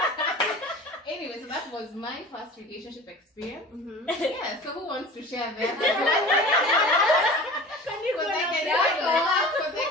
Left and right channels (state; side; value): normal; both; correlation 0.38